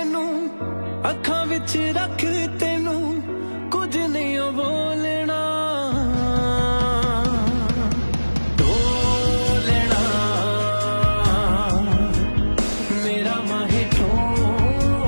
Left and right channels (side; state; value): both; inverted; correlation -1.00